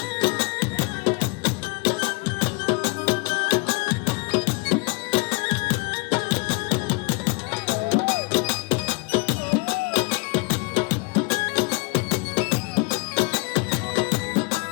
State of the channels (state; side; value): quieter; right; 31.1 dB